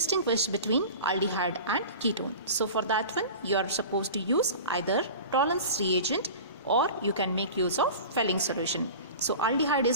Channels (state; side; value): inverted; both; correlation -0.35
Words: between aldehyde and ketone. So for that one, you are supposed to use either tolerance reagent or you can make use of Fehling solution. So aldehyde